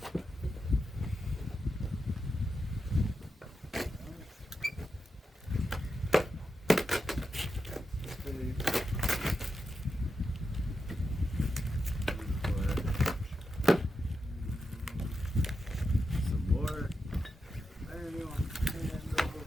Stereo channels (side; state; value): both; normal; correlation 0.88